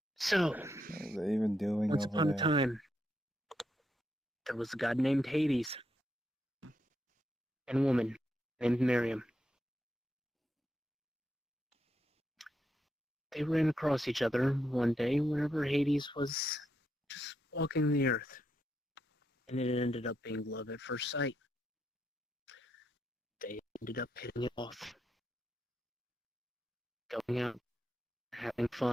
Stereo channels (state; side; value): normal; both; correlation 0.81